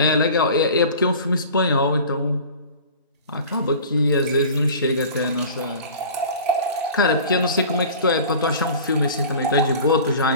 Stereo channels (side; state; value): both; inverted; correlation -0.40